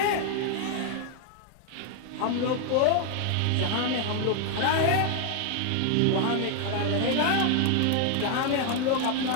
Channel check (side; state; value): both; different; correlation 0.00